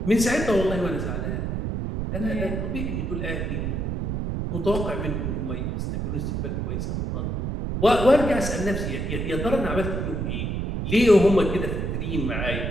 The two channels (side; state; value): right; noise; rumble, 2 dB below the sound